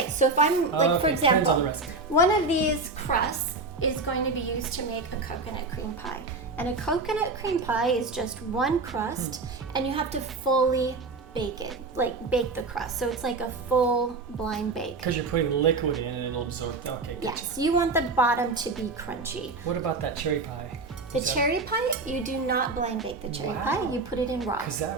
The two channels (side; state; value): left; quieter; 3.6 dB